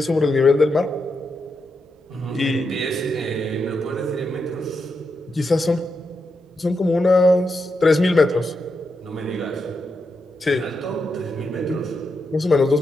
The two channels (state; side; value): normal; both; correlation 0.84